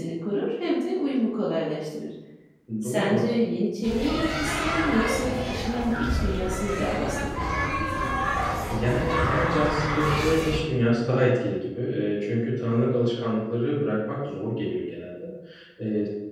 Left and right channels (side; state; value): both; identical; correlation 1.00